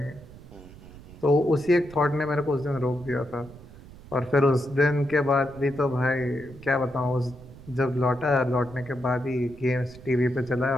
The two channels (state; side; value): noise; right; rumble, 18 dB below the sound